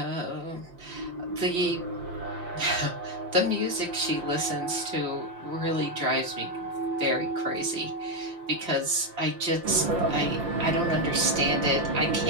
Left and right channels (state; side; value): late; left; 5.8 ms